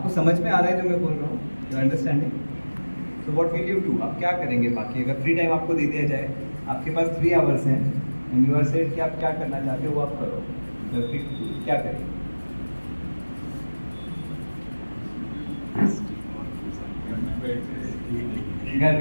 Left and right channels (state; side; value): inverted; both; correlation -1.00